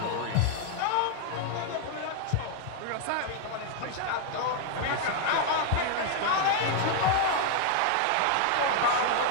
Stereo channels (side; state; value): both; different; correlation 0.00